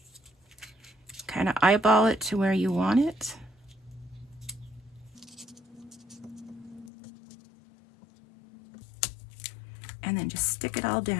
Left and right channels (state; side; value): drops out; right; at 6.9 s